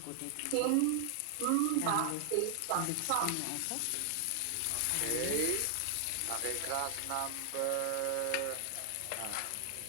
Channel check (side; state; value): both; different; correlation 0.00